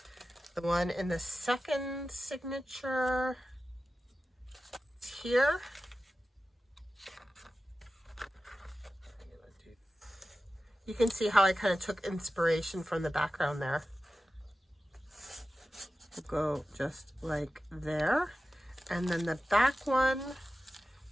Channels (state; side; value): normal; both; correlation 0.94